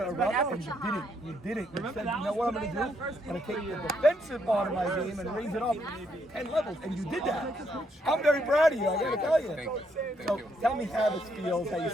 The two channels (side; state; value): both; normal; correlation 0.74